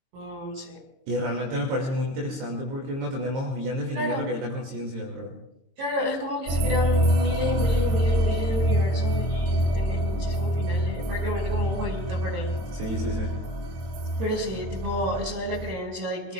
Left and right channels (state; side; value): late; left; 23 ms